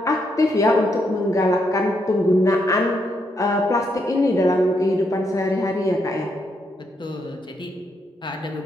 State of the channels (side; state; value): both; normal; correlation 0.78